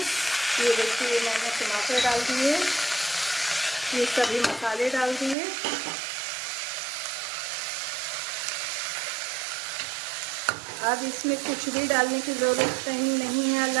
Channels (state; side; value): drops out; left; at 5.4 s